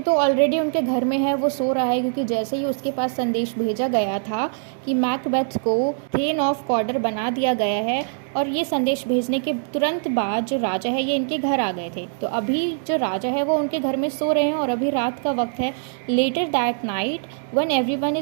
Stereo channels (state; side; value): silent; left; digital silence